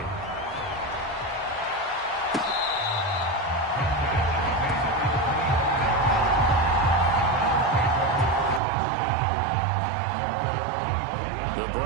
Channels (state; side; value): drops out; left; at 8.6 s